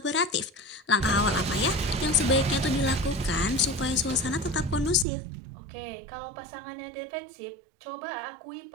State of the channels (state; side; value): drops out; left; at 5.1 s